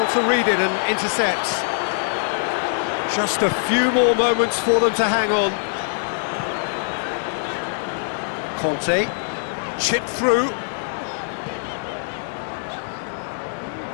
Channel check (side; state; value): right; silent; digital silence